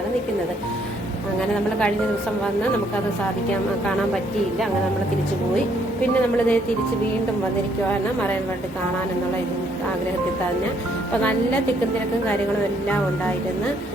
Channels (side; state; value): both; normal; correlation 0.68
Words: നിൽക്കുന്നത്. അങ്ങനെ നമ്മൾ കഴിഞ്ഞ ദിവസം വന്ന് നമുക്കത് കാണാൻ പറ്റിയില്ല. അങ്ങനെ നമ്മൾ തിരിച്ചു പോയി. പിന്നെ നമ്മളിത് തിരിച്ച് വീണ്ടും വന്നിരിക്കുവാണ് മറൈൻ വേൾഡ് കാണാനെന്നുള്ള ആഗ്രഹത്തിൽ തന്നെ. അപ്പോൾ നല്ല തിക്കും തിരക്കും കാര്യങ്ങളും എല്ലാം ഉണ്ടായിരുന്നു.